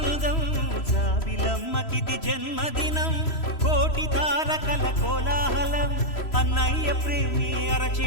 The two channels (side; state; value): right; late; 3.0 ms